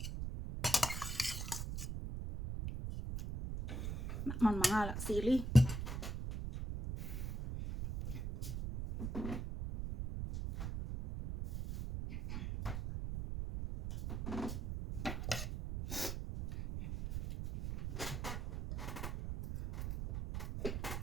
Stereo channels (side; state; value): right; noise; rumble, 4 dB below the sound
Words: Naman mga sili.